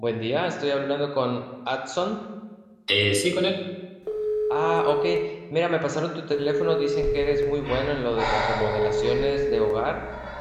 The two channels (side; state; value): both; identical; correlation 1.00